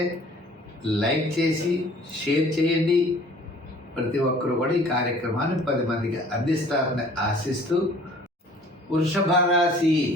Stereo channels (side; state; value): both; normal; correlation 0.52